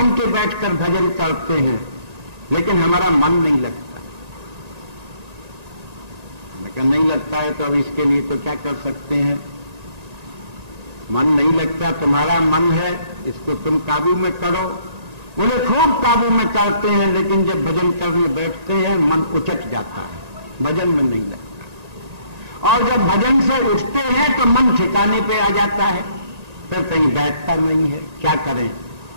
बैठकर भजन करते हैं लेकिन हमारा मन नहीं लगता। मैं नहीं लगता है तो अब इसके लिए तो क्या कर सकते हैं? मन नहीं लगता, तुम्हारा मन है, इसको तुम काबू में करो। बोले खूब काबू में करते हैं, लेकिन जब भजन करने बैठते हैं मन उचट जाता है, भजन में नहीं लगता। और जब भजन से उठते हैं तो मन ठिकाने पे आ जाता है, फिर कहीं बैठता नहीं है। क्या करें?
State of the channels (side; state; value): left; late; 1.9 ms